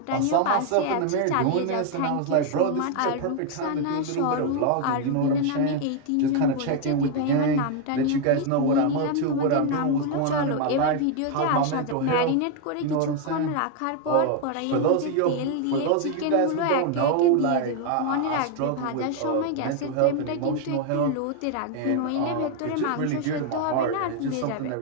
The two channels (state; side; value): different; both; correlation 0.01